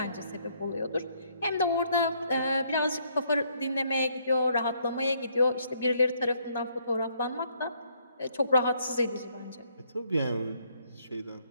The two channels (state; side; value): inverted; both; correlation -0.69